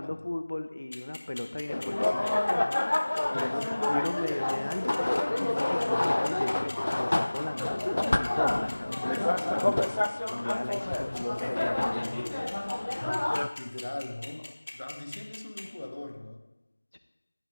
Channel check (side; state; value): both; inverted; correlation -1.00